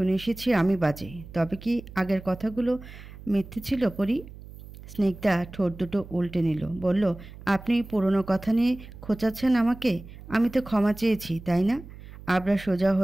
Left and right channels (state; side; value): noise; right; hum, 16 dB below the sound